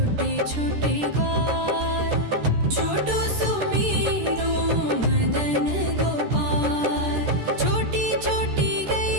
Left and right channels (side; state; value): left; late; 13 ms